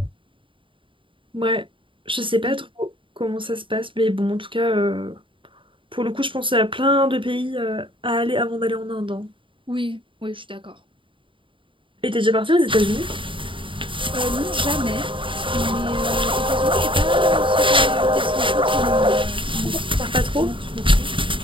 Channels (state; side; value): late; left; 0.25 ms